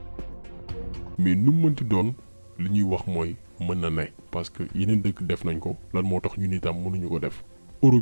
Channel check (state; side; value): inverted; both; correlation -1.00